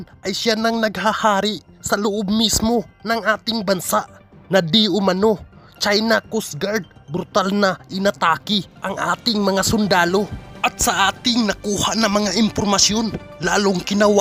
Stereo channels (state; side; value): identical; both; correlation 1.00